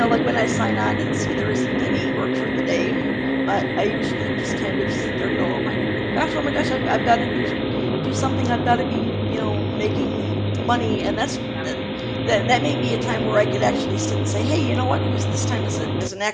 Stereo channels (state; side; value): identical; both; correlation 1.00